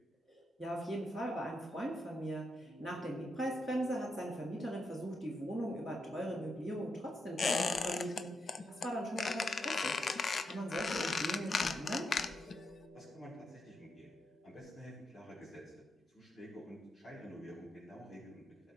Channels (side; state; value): both; normal; correlation 0.83